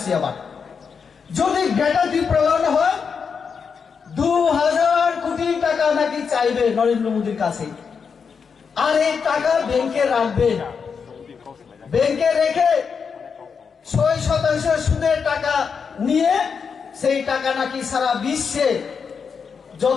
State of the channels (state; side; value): quieter; right; 6.0 dB